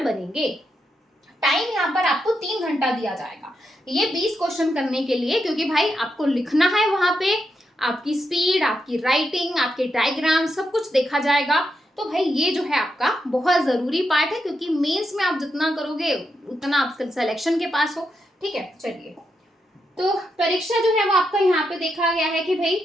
बनेंगे। टाइम यहाँ पर आपको 3 घंटा दिया जाएगा ये 20 क्वेश्चन करने के लिए, क्योंकि भाई आपको लिखना है, वहां पे आपकी स्पीड, आपकी राइटिंग, आपके डायग्राम सब कुछ देखा जाएगा। तो भाई ये जो है आपका बहुत जरूरी पार्ट है, क्योंकि मेंस में आप जितना करोगे उतना आप सिलेक्शन के पास हो, ठीक है। चलिए तो परीक्षा जो है वो आपका यहाँ पे देखा गया है कि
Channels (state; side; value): normal; both; correlation 0.84